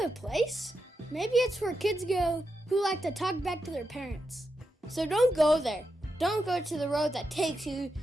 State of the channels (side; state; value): both; normal; correlation 0.86